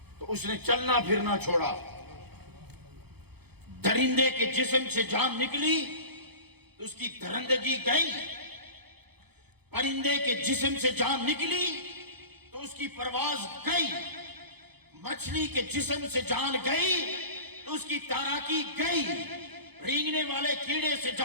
تو اس نے چلنا پھرنا چھوڑا. درندے کے جسم سے جان نکلی تو اس کی درندگی گئی. پرندے کے جسم سے جان نکلی تو اس کی پرواز گئی. مچھلی کے جسم سے جان گئی تو اس کی تیراکی گئی. رینگنے والے کیڑے سے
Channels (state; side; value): late; left; 0.98 ms